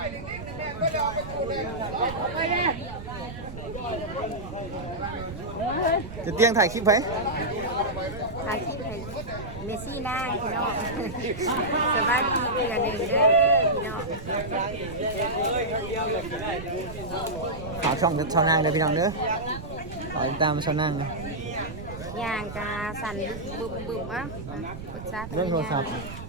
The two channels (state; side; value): noise; right; rumble, 11 dB below the sound